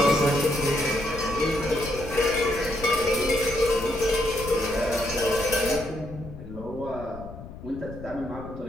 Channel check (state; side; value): noise; left; rumble, 13 dB below the sound